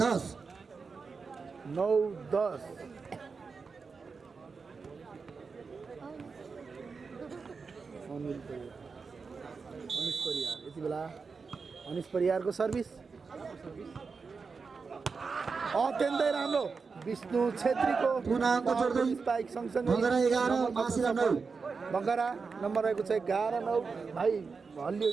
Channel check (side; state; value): left; quieter; 4.9 dB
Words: 10 9-10 अनिश परियार यति बेला अनिश परियारको सर्भिस अत्यन्तै राम्रो विष्णु छेत्रीको पुनः अङ्क जोड्दै स्पाइक सँगसँगै भगरा 11 महाशिला 9 बगरा नम्बर रहेको छ 11-9 भाइ हल्लियो